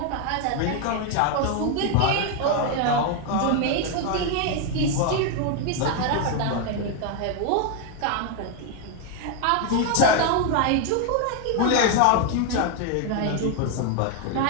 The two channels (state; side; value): different; both; correlation 0.01